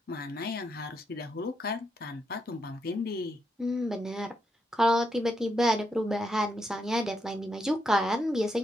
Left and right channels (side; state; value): both; normal; correlation 0.81